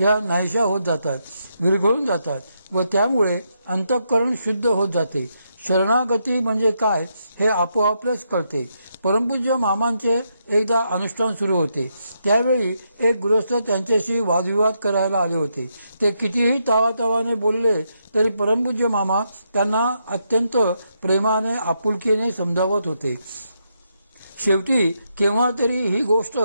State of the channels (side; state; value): both; inverted; correlation -0.80